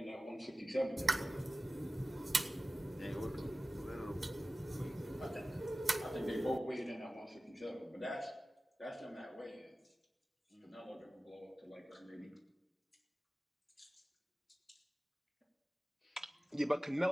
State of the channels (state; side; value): normal; both; correlation 0.96